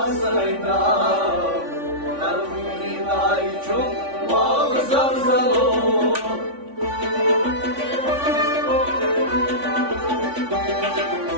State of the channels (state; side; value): late; left; 3.5 ms